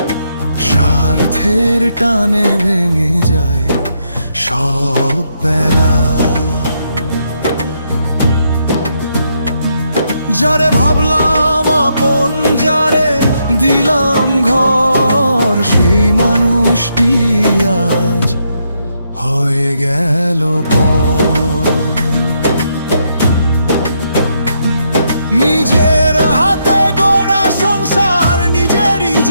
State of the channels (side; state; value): both; inverted; correlation -0.78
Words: স্বার্থের টানে ভেঙে যায় সব বেলা। যারে ভাবলাম আপন, যারে দিলাম ঘর, সেই মানুষটি আজ হয়ে গেল পর। নিজের হাতে গড়া সংসার নিজেরই